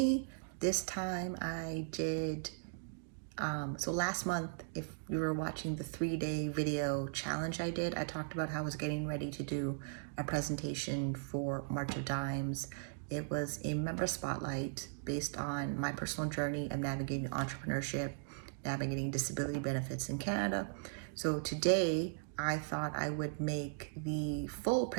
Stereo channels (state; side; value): silent; left; digital silence